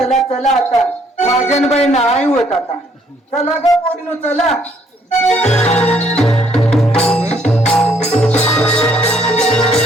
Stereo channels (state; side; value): normal; both; correlation 0.66